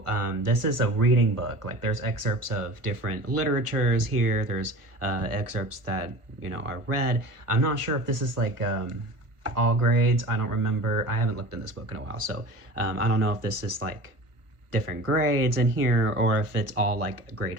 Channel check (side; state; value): left; late; 1.5 ms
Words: this is a reading book. Like there's excerpts of different literatures here. There's excerpts that, you know, are read. I'm not sure if this is like all grades. I don't remember. I haven't looked in this book in a while. So I don't know if this is like different grades in here or if it's all like